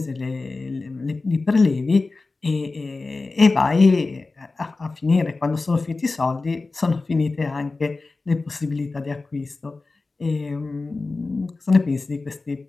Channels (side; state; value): right; quieter; 3.6 dB